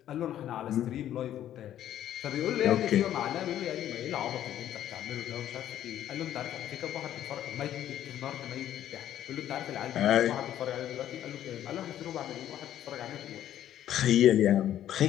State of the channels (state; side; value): quieter; right; 11.6 dB